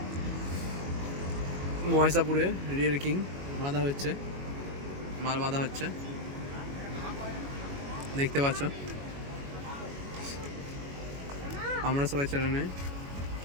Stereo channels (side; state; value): left; late; 21 ms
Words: মহেশাপুরে রিয়েল কিং বাঁধা হচ্ছে, মাল বাঁধা হচ্ছে, দেখতে পাচ্ছ। আমরা সবাই চ্যানেলে